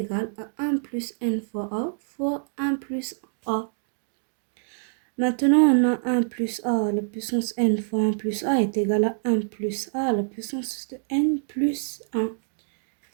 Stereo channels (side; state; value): left; silent; digital silence